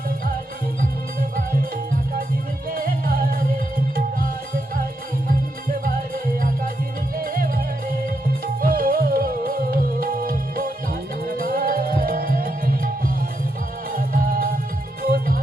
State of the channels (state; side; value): normal; both; correlation 0.82